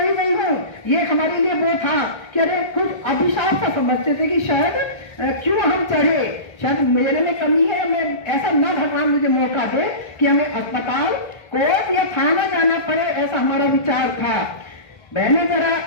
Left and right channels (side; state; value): right; late; 1.3 ms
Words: गई हूँ। ये हमारे लिए वो था कि अरे कुछ अभिशाप सा समझते थे कि शायद क्यों हम चढ़े, शायद मेरे में कमी है, मैं ऐसा ना भगवान मुझे मौका दे कि हमें अस्पताल, कोर्ट या थाना जाना पड़े, ऐसा हमारा विचार था। बहने जरा